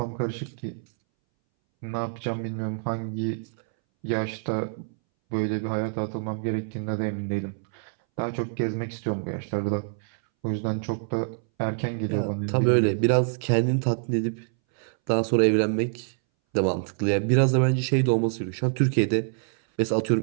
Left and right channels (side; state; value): left; silent; 61 dB below the other